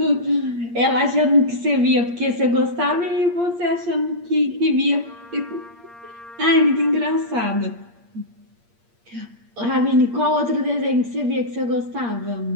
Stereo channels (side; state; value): left; late; 8.6 ms